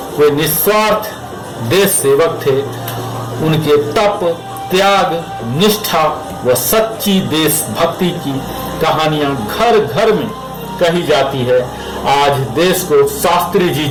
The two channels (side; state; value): both; identical; correlation 1.00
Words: वे निस्वार्थ देश सेवक थे। उनके तप, त्याग, निष्ठा व सच्ची देशभक्ति की कहानियां घर घर में कही जाती है। आज देश को शास्त्री जी